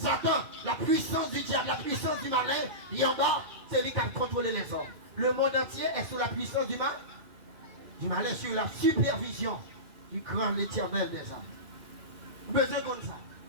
la puissance du diable, la puissance du malin, il est en bas, c'est lui qui a contrôlé les hommes. Le monde entier est sous la puissance du malin, sur la supervision du grand l'Éternel des armées. Besoin comme ça.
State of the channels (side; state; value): left; late; 2.5 ms